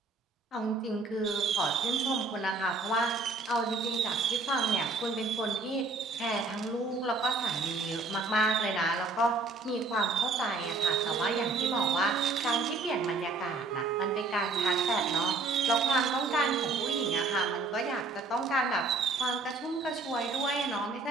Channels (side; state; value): left; quieter; 3.7 dB